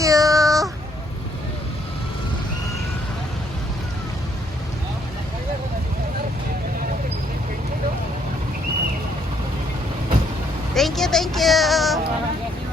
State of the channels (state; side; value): normal; both; correlation 0.69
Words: Thank you, thank you.